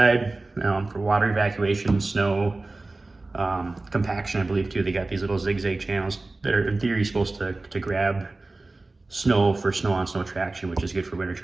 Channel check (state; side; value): quieter; left; 3.2 dB